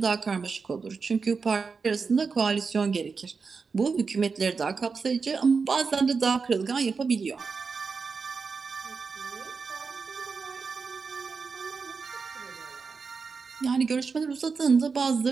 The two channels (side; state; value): left; quieter; 5.0 dB